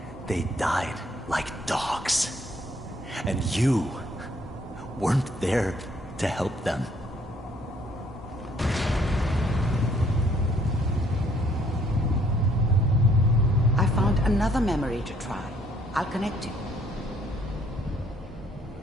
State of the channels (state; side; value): normal; both; correlation 0.65